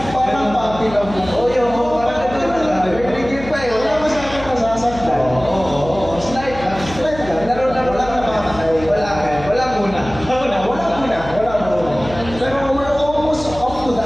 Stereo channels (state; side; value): noise; left; hum, 13 dB below the sound